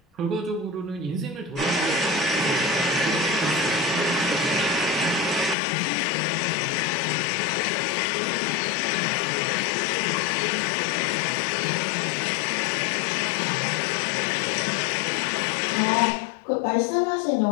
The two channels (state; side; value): drops out; right; at 5.6 s